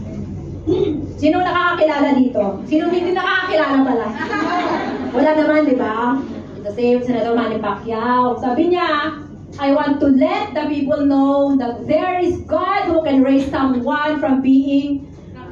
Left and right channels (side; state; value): both; identical; correlation 1.00